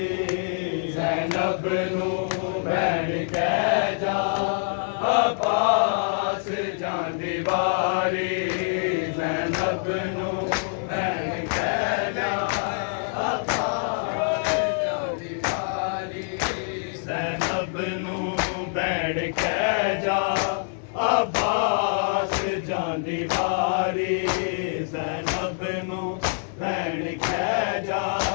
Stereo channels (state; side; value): silent; right; 61 dB below the other